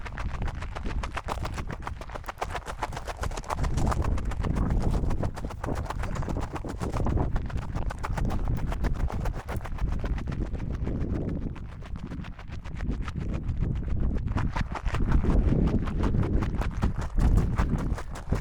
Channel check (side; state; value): both; identical; correlation 1.00